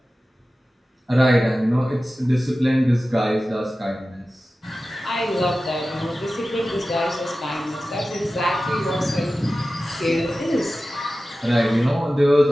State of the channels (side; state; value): both; normal; correlation 0.95